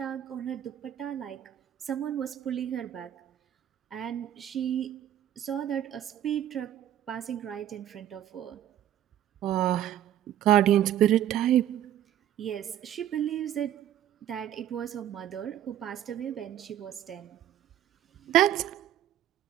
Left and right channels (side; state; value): left; quieter; 11.4 dB